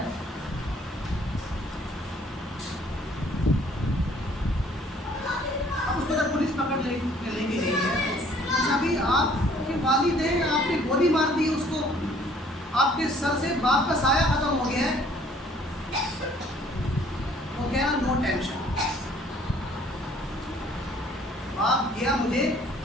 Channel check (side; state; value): both; normal; correlation 0.58